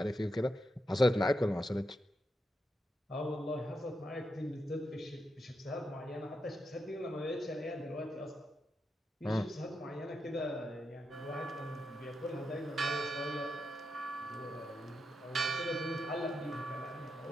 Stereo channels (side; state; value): both; normal; correlation 0.85